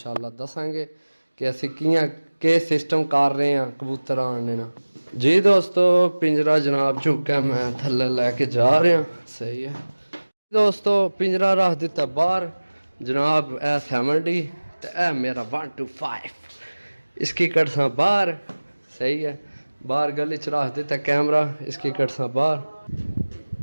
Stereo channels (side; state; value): both; inverted; correlation -1.00